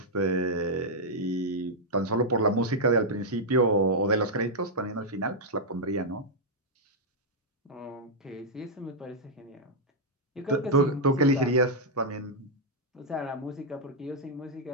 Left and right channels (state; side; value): normal; both; correlation -0.04